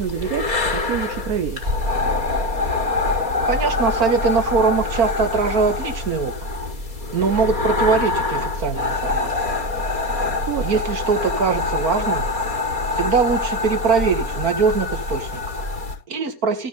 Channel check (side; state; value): left; late; 4.3 ms